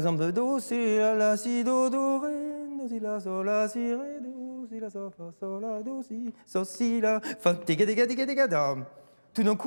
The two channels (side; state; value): both; inverted; correlation -1.00